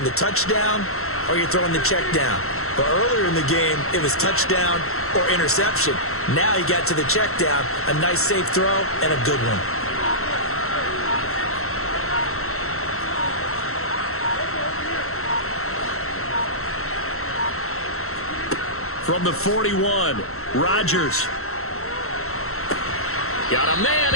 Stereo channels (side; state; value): right; late; 0.63 ms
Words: the touchdown or you're throwing the check down. But earlier in the game, it was touchdown or interception. Now he got to the check down, a nice safe throw, and a good one. From the 41, Rodgers. Got a man,